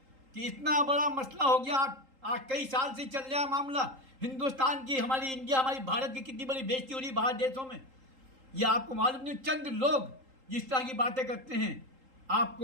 कि इतना बड़ा मसला हो गया। आज कई साल से चल रहा है मामला, हिंदुस्तान की, हमारी इंडिया, हमारी भारत की कितनी बड़ी बेइज्जती हो रही है बाहर देशों में। यह आपको मालूम नहीं, चंद लोग जिस तरह की बातें करते हैं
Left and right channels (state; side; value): late; left; 3.8 ms